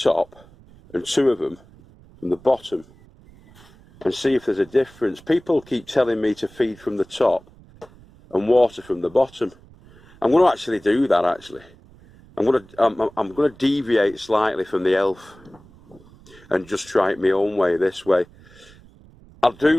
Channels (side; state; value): right; noise; rumble, 25 dB below the sound